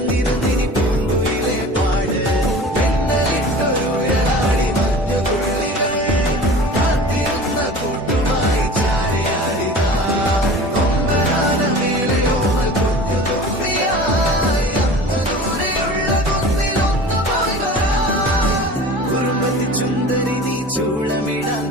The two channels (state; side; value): normal; both; correlation 0.39